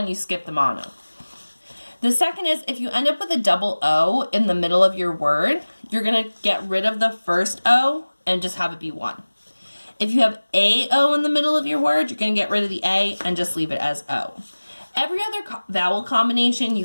you skip the mono. The second is, if you end up with a double O in the middle of your word, you're going to get rid of the first O and just have it be 1. If you have AO in the middle of your word, you're going to get rid of the A and just leave it as O. Every other vowel combination you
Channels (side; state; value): both; inverted; correlation -1.00